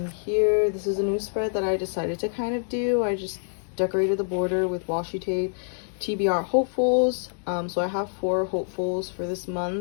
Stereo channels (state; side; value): silent; right; digital silence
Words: here, this is a new spread that I decided to kind of do. I just decorated the border with washi tape, TBR hopefuls. So I have 4 hopefuls for this